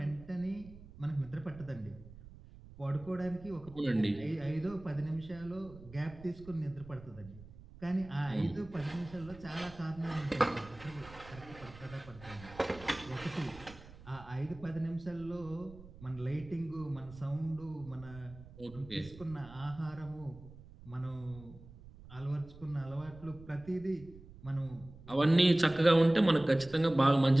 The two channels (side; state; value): right; noise; rumble, 18 dB below the sound